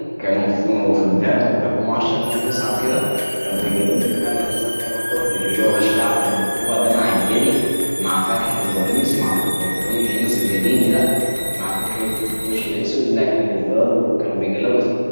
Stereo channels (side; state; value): both; inverted; correlation -1.00